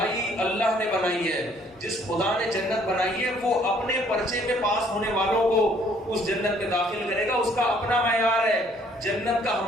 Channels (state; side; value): normal; both; correlation 0.62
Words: اللہ نے بنائی ہے. جس خدا نے جنت بنائی ہے وہ اپنے پرچے میں پاس ہونے والوں کو اس جنت میں داخل کرے گا. اس کا اپنا معیار ہے. جنت کا